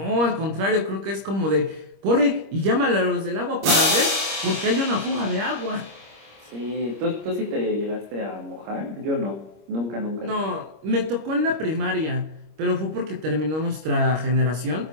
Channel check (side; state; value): left; late; 25 ms